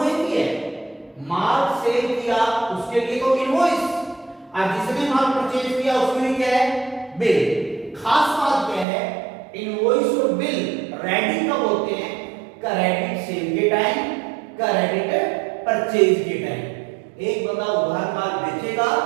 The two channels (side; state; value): left; drops out; at 8.8 s